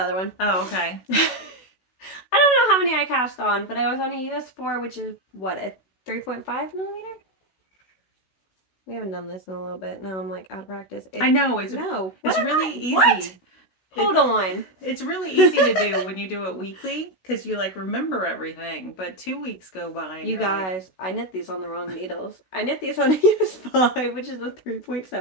other one. Oh, okay. I don't know how many I cast on, but I was on a US4, which is what, a 3.5 millimeter? We haven't done this in a little bit. Now I'm like out of practice. I know it's really easy. What? Hold on. It's really easy to do when you do it weekly because you like remember everything. But 2 weeks go by. And you guys, I knit these on the wrong needles. I knit these on a US5, which is a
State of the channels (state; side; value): late; right; 16 ms